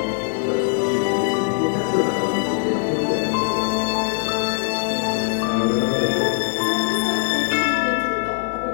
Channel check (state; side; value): silent; right; digital silence